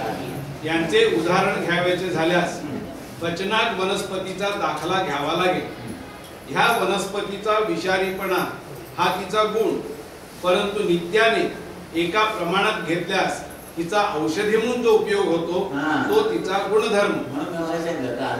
यांचे उदाहरण घ्यावयाचे झाल्यास पचनाक वनस्पतीचा दाखला घ्यावा लागेल. ह्या वनस्पतीचा विषारीपणा हा तिचा गुण, परंतु नित्याने एका प्रमाणात घेतल्यास तिचा औषधी म्हणून जो उपयोग होतो तो तिचा गुणधर्म.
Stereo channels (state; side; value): identical; both; correlation 1.00